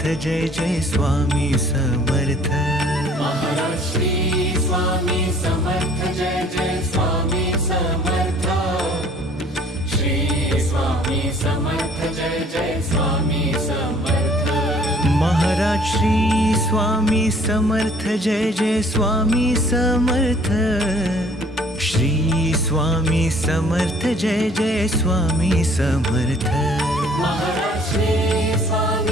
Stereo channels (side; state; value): both; normal; correlation 0.56